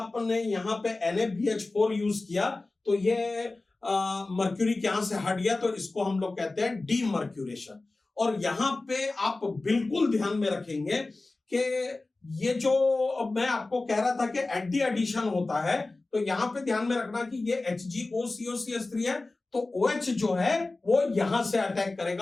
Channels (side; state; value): right; quieter; 3.2 dB